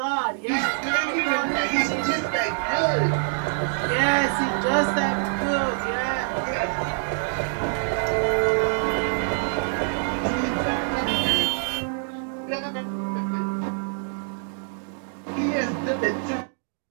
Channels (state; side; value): silent; left; digital silence